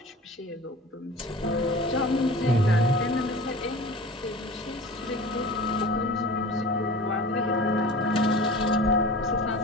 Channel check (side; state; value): both; normal; correlation 0.38